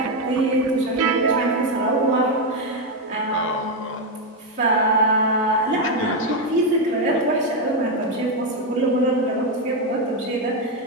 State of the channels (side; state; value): both; normal; correlation 0.05